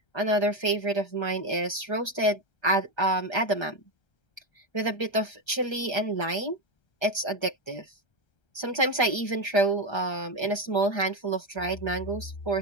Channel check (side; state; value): right; late; 1.3 ms